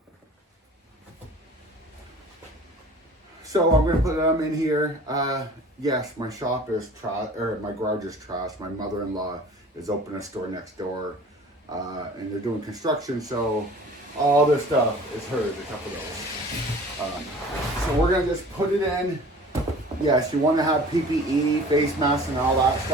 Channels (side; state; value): both; normal; correlation 0.45